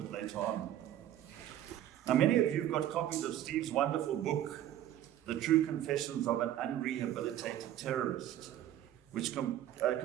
later on. Now, many of you have got copies of Steve's wonderful book, The True Confessions of an Unrehabilitated Terrorist, which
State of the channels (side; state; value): left; quieter; 12.0 dB